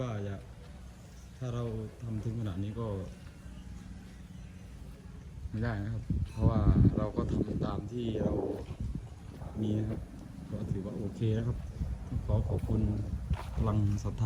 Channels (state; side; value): identical; both; correlation 1.00